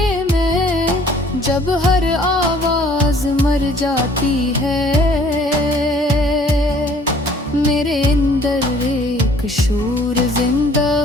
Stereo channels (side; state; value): both; normal; correlation 0.56